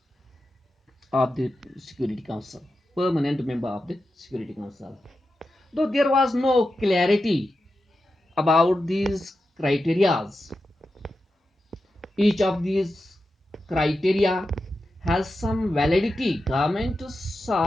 of the Security Council, permanent member of the Security Council. Though there was no clarity about these criterias, each of these criteria has some validity. Government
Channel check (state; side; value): normal; both; correlation 0.90